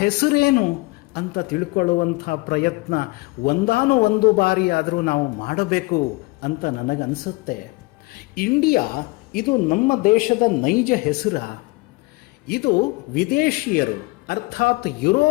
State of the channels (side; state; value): right; quieter; 24.1 dB